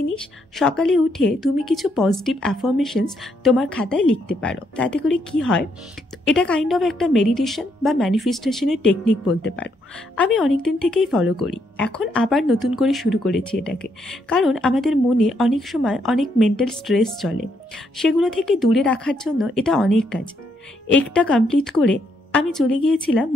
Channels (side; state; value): both; normal; correlation 0.75